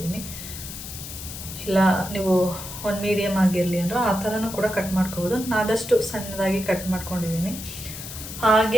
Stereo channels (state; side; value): noise; left; hiss, 10 dB below the sound